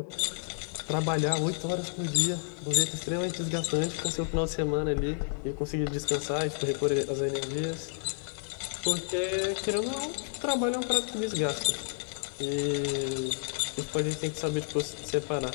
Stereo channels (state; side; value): silent; right; 57 dB below the other